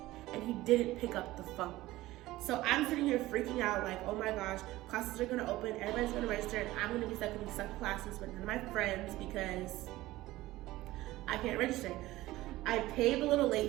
and he didn't pick up the phone. So I'm sitting here freaking out like, oh my gosh, classes are gonna open, everybody's gonna register, and I'm gonna be stuck in these suck classes with none of my friends because I can't register. I paid the little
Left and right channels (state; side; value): quieter; left; 17.3 dB